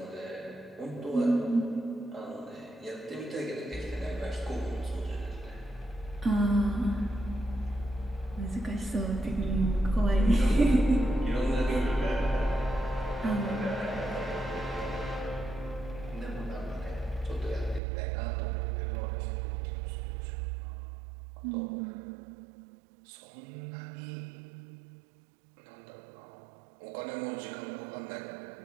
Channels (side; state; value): left; drops out; at 17.8 s